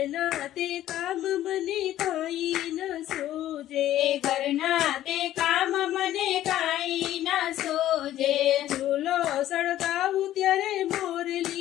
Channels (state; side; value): quieter; right; 13.2 dB